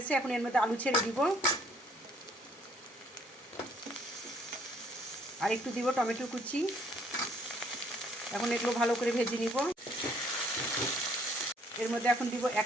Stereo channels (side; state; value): both; normal; correlation 0.63